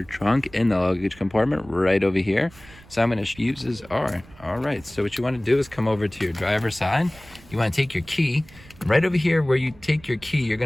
trunk in the luggage compartment right over here. So I'm going to fuses are all right. So what you want to do is come over to your driver's side. You want to take your key right over here. Where you take your key, you're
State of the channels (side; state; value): right; noise; rumble, 23 dB below the sound